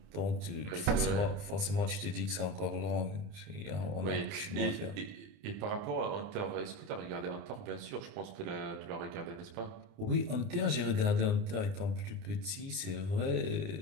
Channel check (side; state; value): left; late; 29 ms